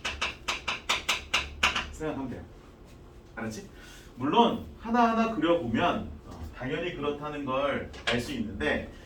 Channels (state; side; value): identical; both; correlation 1.00